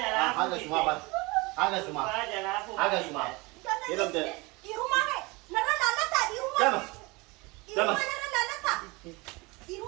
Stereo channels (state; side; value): quieter; left; 25.1 dB